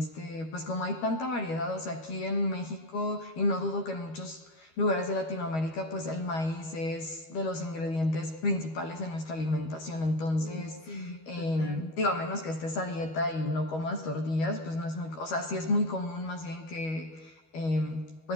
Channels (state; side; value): late; right; 13 ms